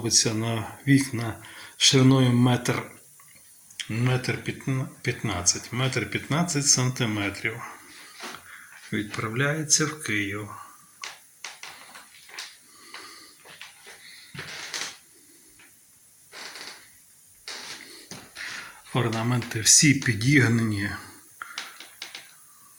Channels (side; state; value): both; identical; correlation 1.00